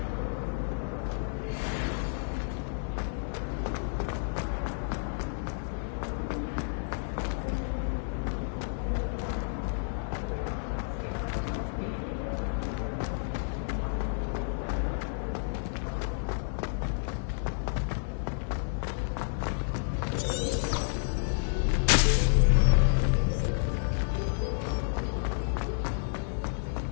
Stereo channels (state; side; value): silent; right; digital silence